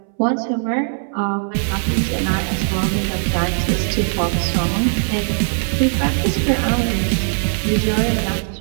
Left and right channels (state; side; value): silent; left; 65 dB below the other